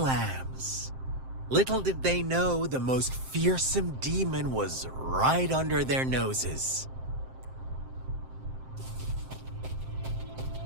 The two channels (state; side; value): late; left; 7.6 ms